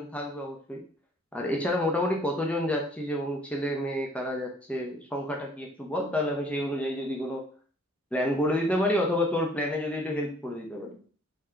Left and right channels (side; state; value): both; normal; correlation 0.58